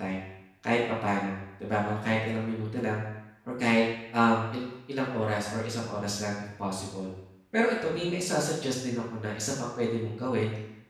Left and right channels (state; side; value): identical; both; correlation 1.00